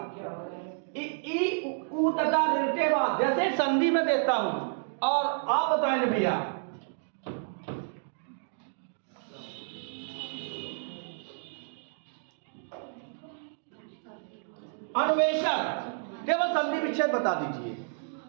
ई उ तथा ऋण के बाद जैसे संधि में देता हूं और आप बताएंगे भैया, अन्वेषण, केवल संधि विच्छेद बता दीजिए।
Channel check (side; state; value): left; silent; digital silence